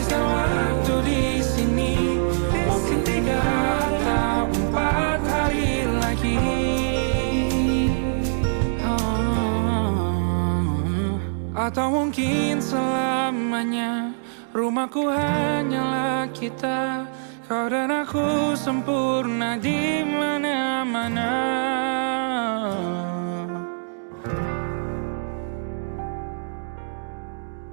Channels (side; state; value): left; silent; digital silence